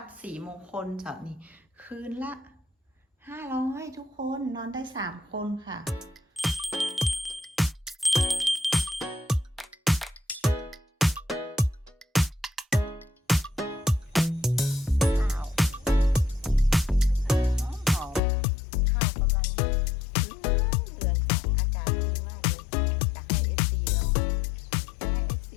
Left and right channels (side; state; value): right; drops out; at 18.2 s